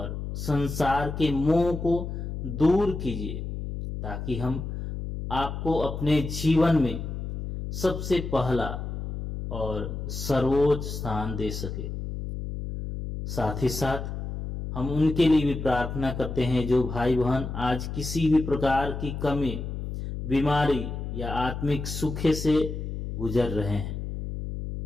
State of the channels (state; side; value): noise; left; hum, 6 dB below the sound